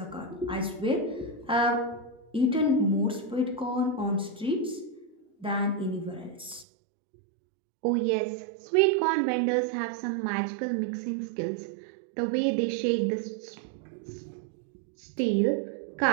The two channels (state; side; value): drops out; left; at 6.7 s